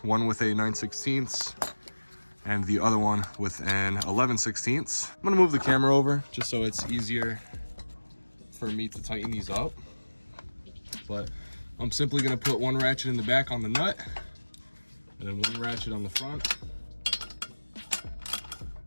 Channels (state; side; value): inverted; both; correlation -1.00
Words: one with a 9/16 and the other one with an 11/16. I'm gonna move the camera over just so it's easier for me to tighten these up. But I'm simply gonna put one ratchet in the back on the nut and then one ratchet on the front.